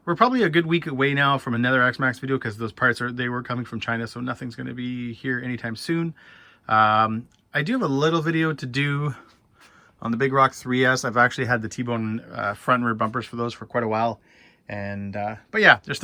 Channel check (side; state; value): both; identical; correlation 1.00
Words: a good week away now from another X-Maxx video, because those parts they were coming from China, so nothing's going to be here anytime soon. I do have a little video to do on the Big Rock 3S. I've actually had the T-bone front and rear bumpers for those for quite a while. And but yeah, there's